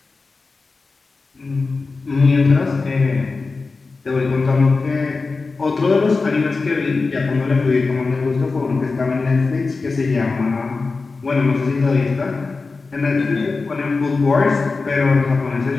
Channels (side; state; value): right; quieter; 4.1 dB